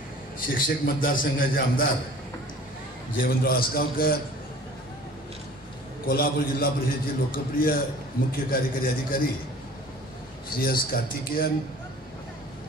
शिक्षक मतदारसंघाचे आमदार जयवंतराव आसगावकर, कोल्हापूर जिल्हा परिषदेचे लोकप्रिय मुख्य कार्यकारी अधिकारी श्री एस कार्तिकेयन,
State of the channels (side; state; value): both; normal; correlation 0.47